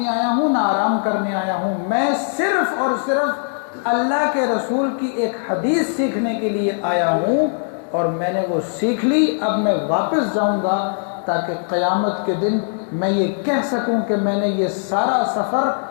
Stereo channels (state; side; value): silent; right; digital silence